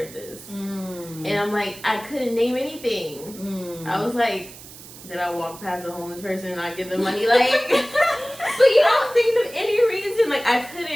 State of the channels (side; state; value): right; noise; hiss, 17 dB below the sound